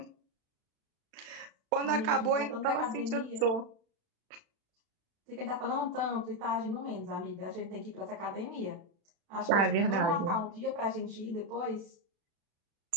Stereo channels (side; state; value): left; late; 35 ms